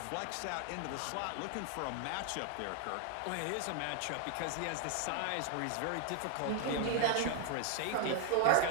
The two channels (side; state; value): both; different; correlation 0.00